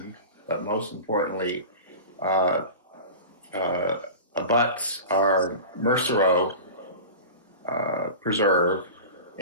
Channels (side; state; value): both; inverted; correlation -0.33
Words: but most importantly, abuts our Mercero Preserve